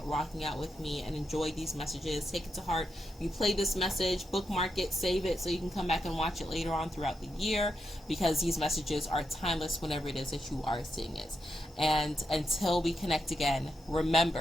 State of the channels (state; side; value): normal; both; correlation 0.84